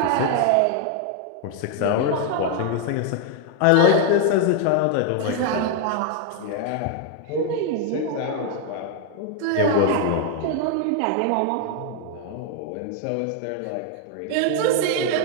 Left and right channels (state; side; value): different; both; correlation 0.00